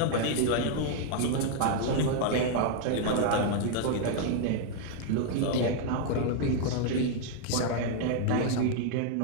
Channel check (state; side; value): different; both; correlation 0.00